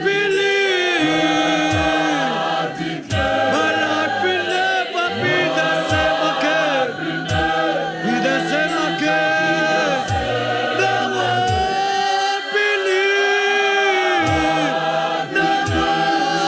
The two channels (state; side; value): identical; both; correlation 1.00